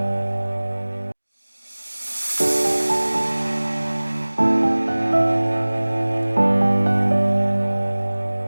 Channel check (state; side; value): inverted; both; correlation -1.00